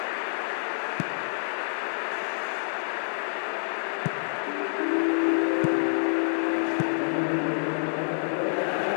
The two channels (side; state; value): right; silent; digital silence